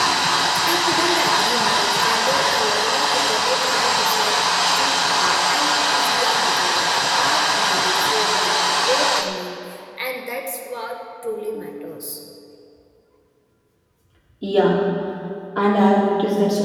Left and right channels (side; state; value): both; identical; correlation 1.00